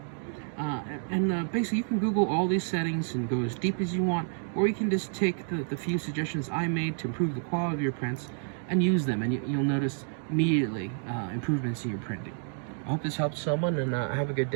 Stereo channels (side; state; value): left; silent; 58 dB below the other